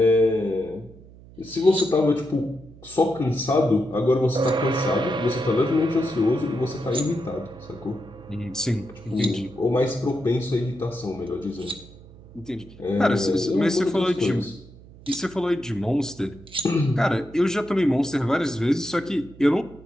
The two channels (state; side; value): noise; right; hum, 21 dB below the sound